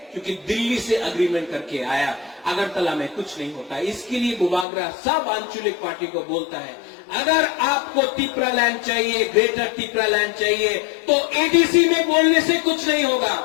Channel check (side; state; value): right; drops out; at 4.7 s